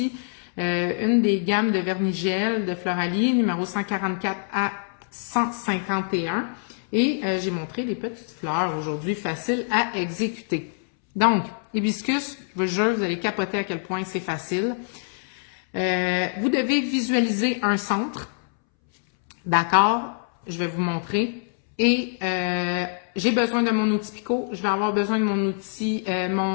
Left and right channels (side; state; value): right; silent; 62 dB below the other